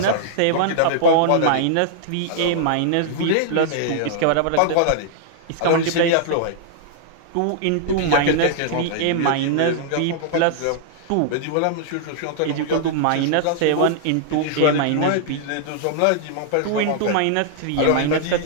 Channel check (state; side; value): different; both; correlation -0.01